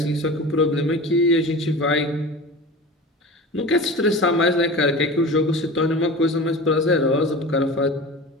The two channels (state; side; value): normal; both; correlation 0.34